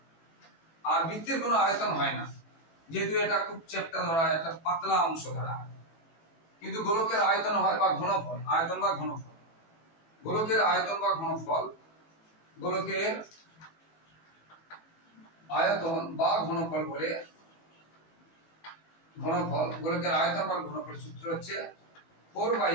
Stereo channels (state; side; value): late; right; 18 ms